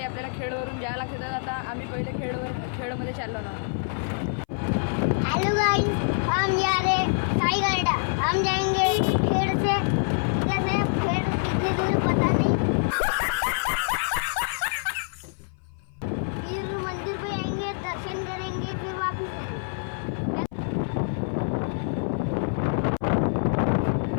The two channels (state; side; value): silent; right; 57 dB below the other